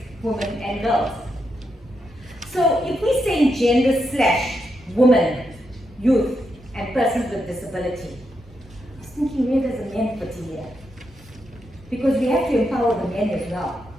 women, and girls. So if we say gender/women, youth, and persons with disability, I was thinking, where does the men fit in here? Because we have to empower the men as well.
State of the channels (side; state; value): both; normal; correlation 0.83